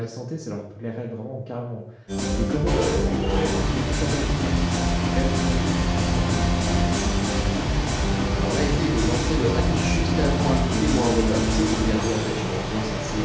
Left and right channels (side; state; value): both; identical; correlation 1.00